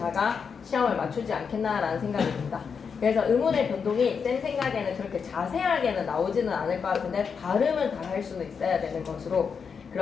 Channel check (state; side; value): quieter; right; 6.1 dB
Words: 시험을 맞추지 않겠나라는 생각이 듭니다. 그래서 의문의 변동이 쌤 생각에는 그렇게 자세하게는 나오지는 않을 것 같은데 발음은 다 할 수는 있어야 되는 것으로